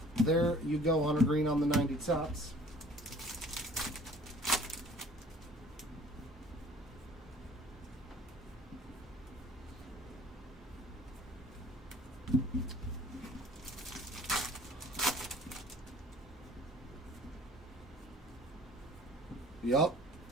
There you go, Hunter Green on the 90 tops. Yup.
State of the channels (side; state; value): both; normal; correlation 0.51